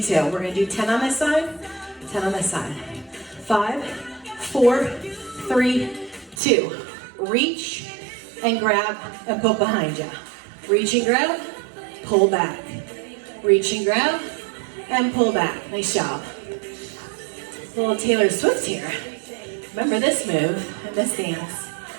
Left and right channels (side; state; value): left; drops out; at 6.4 s